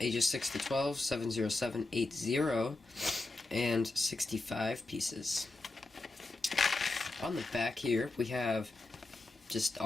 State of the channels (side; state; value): right; quieter; 3.1 dB